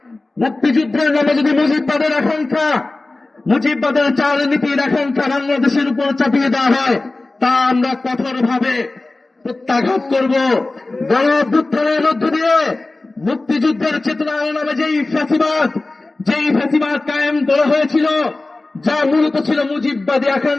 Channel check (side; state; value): right; quieter; 3.1 dB